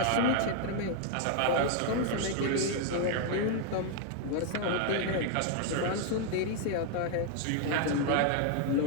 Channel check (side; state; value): both; different; correlation 0.00